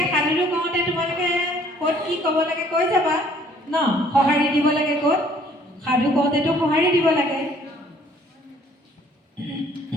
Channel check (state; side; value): normal; both; correlation 0.59